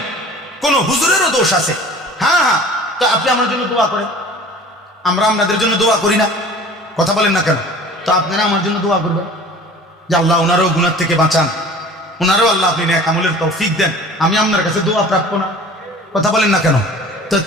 কোন হুজুরেরও দোষ আছে, হ্যাঁ, তো আপনি আমার জন্য দোয়া করেন, আমরা আপনাদের জন্য দোয়া করি না? কথা বলেন না কেন? তো আপনারা আমার জন্য দোয়া করবেন যে আল্লাহ ওনারও গুনাহ থেকে বাঁচান, ওনারও আল্লাহ আপনি নেক আমলের তৌফিক দেন, আমি আপনার কাছে দোয়া প্রাপ্য না? কথা বলেন না কেন? তো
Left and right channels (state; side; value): normal; both; correlation 0.44